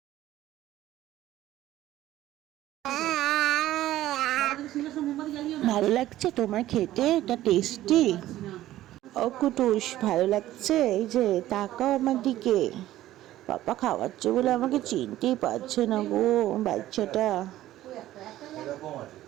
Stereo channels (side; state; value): left; quieter; 14.4 dB